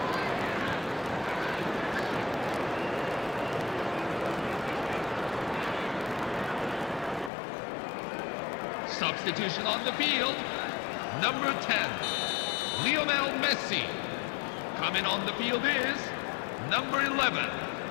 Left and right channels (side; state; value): right; drops out; at 7.3 s